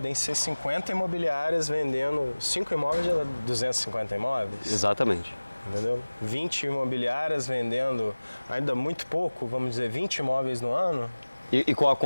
ser 50 imobiliárias vendendo 5 imóveis, já dá 250 imóveis. Exatamente. Entendeu? 20 imobiliárias vendendo ainda muito pouco, vamos dizer 20 imóveis no ano, E qual a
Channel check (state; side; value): inverted; both; correlation -1.00